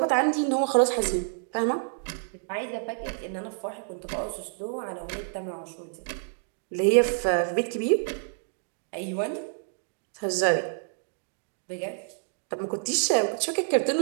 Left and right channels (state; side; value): silent; left; digital silence